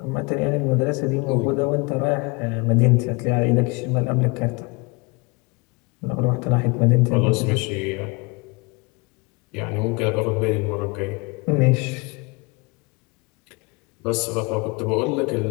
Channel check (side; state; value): right; quieter; 27.7 dB